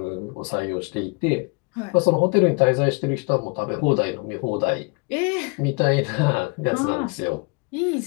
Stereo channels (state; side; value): quieter; right; 31.1 dB